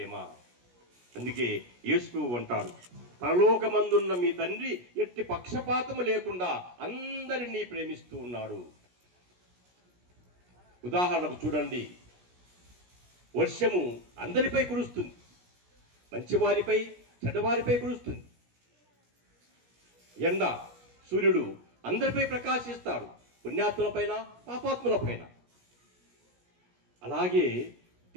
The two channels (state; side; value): late; left; 17 ms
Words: అందుకే యేసు అంటాడు, పరలోకమందున్న మీ తండ్రి ఎట్టి పక్షపాతము లేకుండా అందరినీ ప్రేమిస్తూ ఉన్నాడు. ఉదాహరణకు చూడండి, వర్షము అందరిపై కురుస్తుంది, మంచివారిపై చెడ్డవారిపై కురుస్తుంది. ఎండ సూర్యుడు అందరిపై ప్రకాశిస్తాడు, పుణ్యాత్ములపైన పాపాత్ములపైన. అలాగే